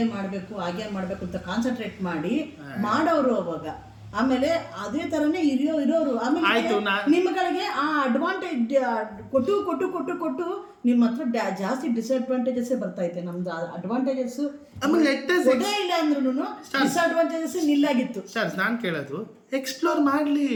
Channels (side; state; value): both; identical; correlation 1.00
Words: ಮಾಡಬೇಕು, ಹಾಗೆ ಮಾಡಬೇಕು ಅಂತ ಕಾನ್ಸಂಟ್ರೇಟ್ ಮಾಡಿ ಮಾಡೋರು ಅವಾಗ. ಆಮೇಲೆ ಅದೇ ಥರನೇ ಇರೋರು. ಆಮೇಲೆ ನಿಮ್ಮ ಕಡೆಗೆ ಆ ಅಡ್ವಾಂಟೇಜ್ ಕೊಟ್ಟು ನಿಮ್ಮ ಹತ್ರ ಜಾಸ್ತಿ ಡಿಸ್ಅಡ್ವಾಂಟೇಜಸ್ ಬರ್ತೈತೆ. ನಮ್ದು ಅಡ್ವಾಂಟೇಜಸ್ ಇಲ್ಲ ಅಂದ್ರೂ ಡಿಸ್ಅಡ್ವಾಂಟೇಜಸ್ ನಿಲ್ಲಾಗಿತ್ತು. ಸರ್, ನಾನು ಕೇಳೋದು, ಎಕ್ಸ್ಪ್ಲೋರ್ ಮಾಡಲಿ,